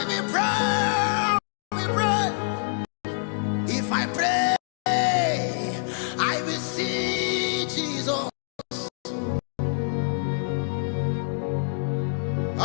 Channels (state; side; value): silent; right; digital silence